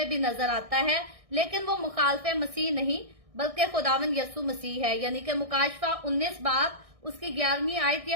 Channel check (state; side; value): late; left; 1.6 ms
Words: भी नजर आता है, लेकिन वो मुखालफे मसीह नहीं बल्कि खुदावंद यीशु मसीह है। यानी कि मुकाशवा 19 बाब उसकी 11वीं आयत ये